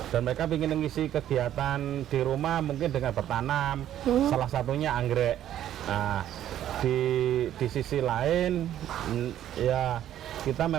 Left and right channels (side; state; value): left; quieter; 11.6 dB